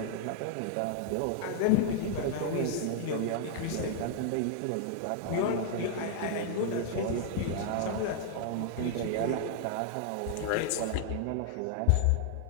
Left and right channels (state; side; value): different; both; correlation 0.00